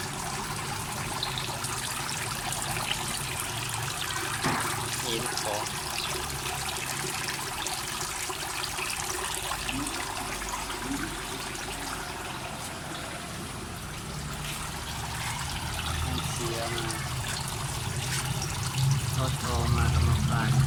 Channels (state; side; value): identical; both; correlation 1.00